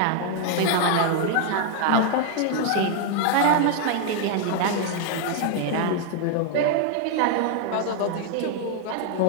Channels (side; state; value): both; different; correlation 0.00